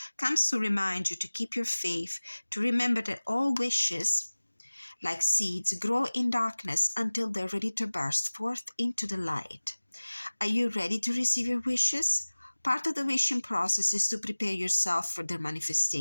comes to remind you to keep your faith, to remember that all wishes, like seeds, grow in darkness until they're ready to burst forth into the light. Are you ready to receive your wishes? Part of the wishing process is to prepare yourself for their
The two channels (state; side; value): inverted; both; correlation -1.00